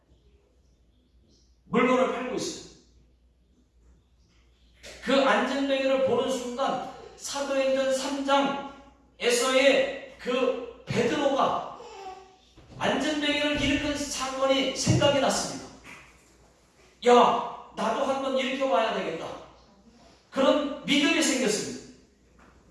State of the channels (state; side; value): identical; both; correlation 1.00